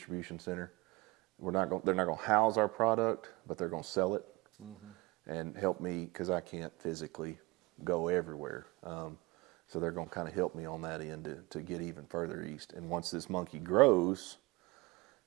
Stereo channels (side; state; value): left; quieter; 23.7 dB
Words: center. They're not going to house our product, but they're going to sell it and help me because I can't physically go everywhere. So they're going to kind of help me on that end to get even further east. And once this monkey grows,